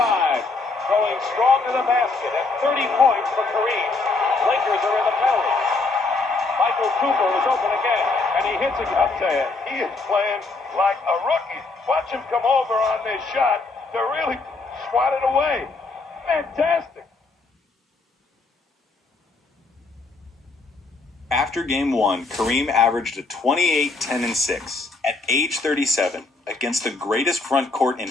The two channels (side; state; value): right; quieter; 3.8 dB